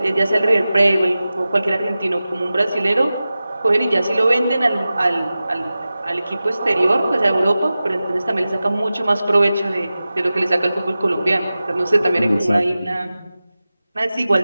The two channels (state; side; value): inverted; both; correlation -0.95